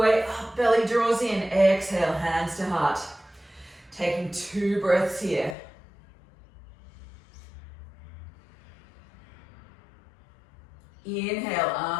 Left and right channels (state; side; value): drops out; right; at 5.6 s